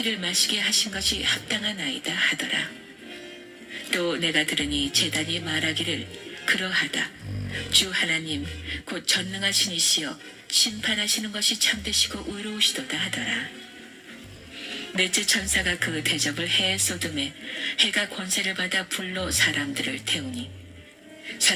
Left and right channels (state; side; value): identical; both; correlation 1.00